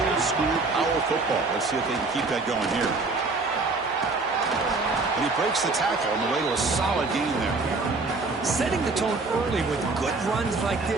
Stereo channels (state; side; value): quieter; left; 3.7 dB